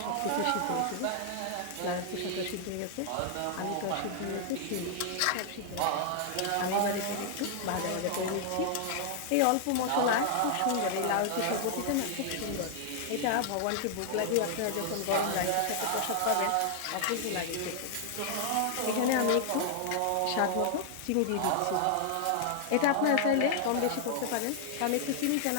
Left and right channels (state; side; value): different; both; correlation 0.00